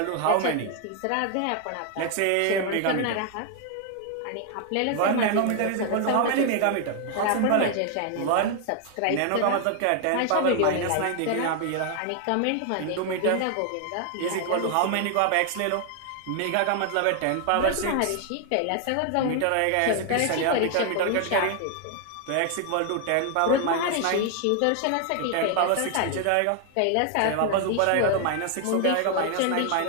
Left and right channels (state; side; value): different; both; correlation 0.00